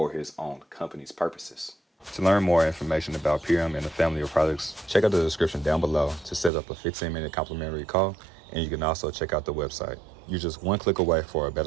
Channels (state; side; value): drops out; left; at 6.5 s